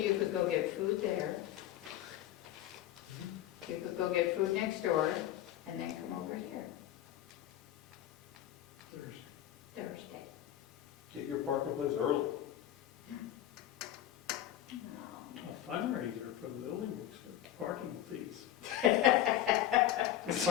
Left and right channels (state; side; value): quieter; right; 12.4 dB